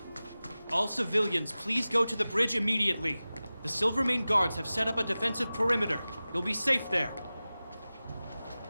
All civilians, please go to the bridge immediately. The Silvermane guards have set up a defensive perimeter. You'll be safe there.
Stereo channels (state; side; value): inverted; both; correlation -0.96